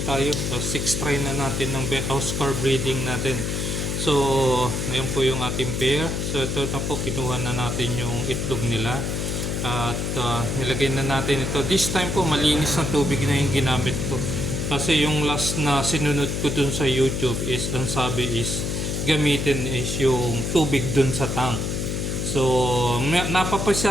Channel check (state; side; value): noise; left; hum, 1 dB below the sound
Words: tayo. So, 6 try na natin ng Oscar breeding natin. So, ngayon po yung ating pair. So, ito na po, kinuha na natin yung itlog nila. At nilagay na natin ito. This time po, malinis na tubig na yung ginamit ko. Kasi yung last na sinunod ko dun sa YouTube is, ang sabi is, gamitin is yung tubig dun sa tank. So,